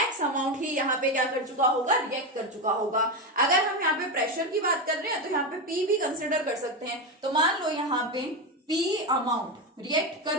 अमाउंट ही यहाँ पे क्या कर चुका होगा, रिएक्ट कर चुका होगा. अगर हम यहाँ पे प्रेशर की बात कर रहे हैं तो यहाँ पे P भी कंसिडर कर सकते हैं. तो मान लो यहाँ पे P अमाउंट रिएक्ट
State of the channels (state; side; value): normal; both; correlation 0.13